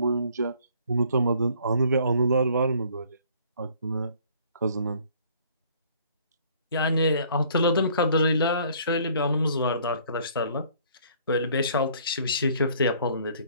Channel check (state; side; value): inverted; both; correlation -0.58